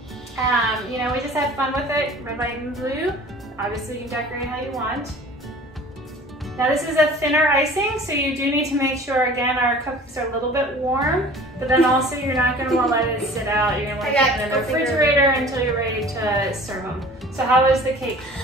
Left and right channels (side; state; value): both; normal; correlation 0.45